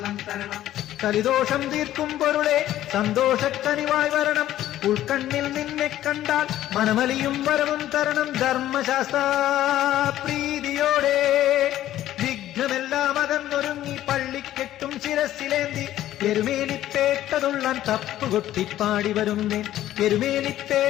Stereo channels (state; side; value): quieter; right; 13.2 dB